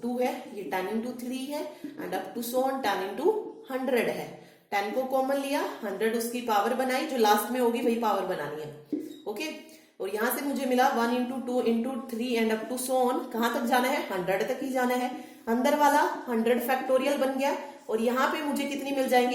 2 है, ये 10 इंटू 3 है and up to so on 10 into 100 है। 10 को कॉमन लिया, 100 उसकी पावर बनाई, जो लास्ट में होगी वही पावर बनानी है। ओके, और यहां से मुझे मिला 1 into 2 into 3 and up to so on, कहां तक जाना है? 100 तक ही जाना है। अंदर वाला 100 फैक्टोरियल बन गया और यहाँ पे मुझे कितनी मिल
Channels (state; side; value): identical; both; correlation 1.00